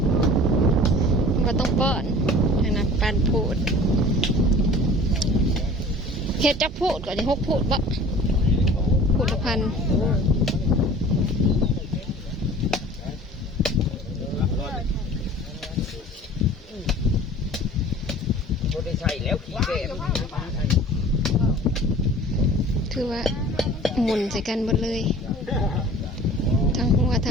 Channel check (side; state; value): both; normal; correlation 0.45